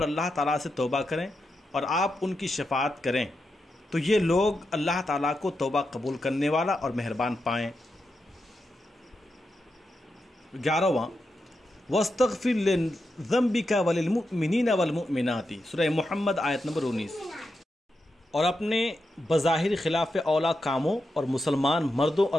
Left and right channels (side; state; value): both; normal; correlation 0.87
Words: اللہ تعالیٰ سے توبہ کریں اور آپ ان کی شفاعت کریں تو یہ لوگ اللہ تعالیٰ کو توبہ قبول کرنے والا اور مہربان پائیں۔ 11واں، وَاسْتَغْفِرْ لِذَنْبِكَ وَلِلْمُؤْمِنِينَ وَالْمُؤْمِنَاتِ، سورہ محمد آیت نمبر 19۔ اور اپنے بظاہر خلاف اولا کاموں اور مسلمان مردوں